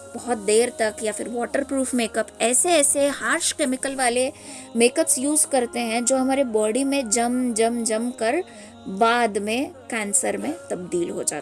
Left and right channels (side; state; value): both; identical; correlation 1.00